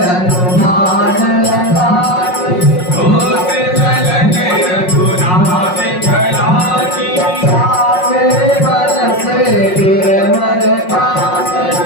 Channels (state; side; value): late; right; 5.5 ms